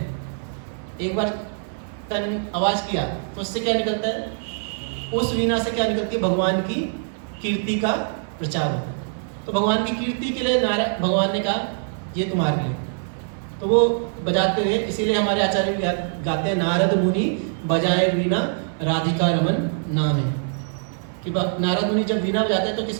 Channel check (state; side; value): silent; left; 58 dB below the other